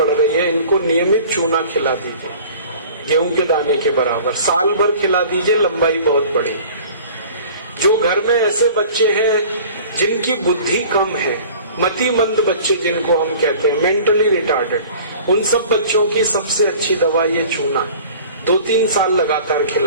रही है, इनको नियमित चूना खिला दीजिए, गेहूं के दाने के बराबर, साल भर खिला दीजिए, लंबाई बहुत बढ़ी। जो घर में ऐसे बच्चे हैं जिनकी बुद्धि कम है, मतिमंद बच्चे जिनको हम कहते हैं, मेंटली रिटार्डेड, उन सब बच्चों की सबसे अच्छी दवा ये चूना। 2-3 साल लगातार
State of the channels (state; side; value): inverted; both; correlation -0.45